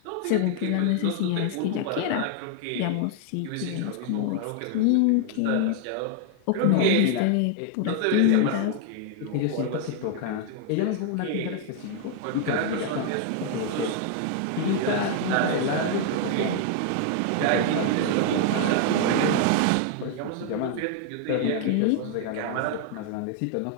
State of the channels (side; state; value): both; different; correlation 0.00